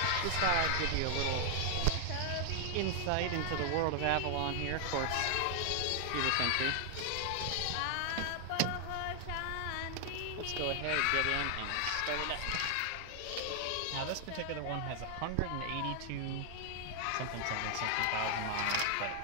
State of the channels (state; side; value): different; both; correlation 0.00